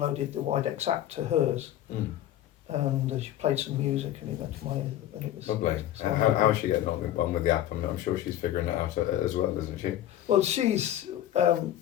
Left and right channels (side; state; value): right; quieter; 12.4 dB